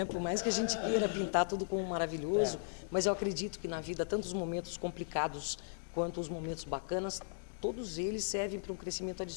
Por mais que a gente queira pintar tudo como maravilhoso, mas eu acredito que na vida, tanto os momentos complicados quanto os momentos bacanas, todos eles servem para um crescimento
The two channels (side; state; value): right; silent; digital silence